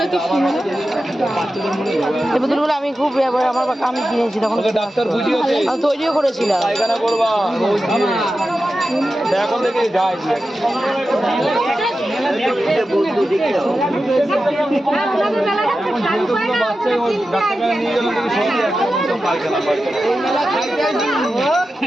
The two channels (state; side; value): normal; both; correlation 0.92